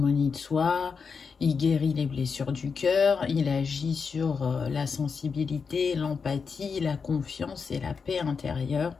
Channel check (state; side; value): quieter; right; 5.5 dB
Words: de soi, il guérit les blessures du cœur, il agit sur la sensibilité, l'empathie, la confiance et la paix intérieure.